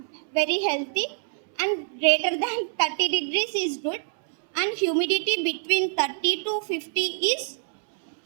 very healthy, and greater than 30 degrees is good. And humidity between 30 to 50 is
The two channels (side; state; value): left; silent; 61 dB below the other